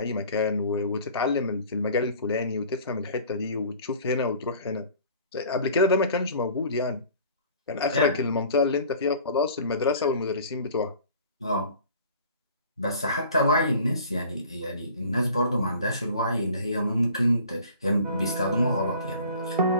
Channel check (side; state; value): both; inverted; correlation -0.48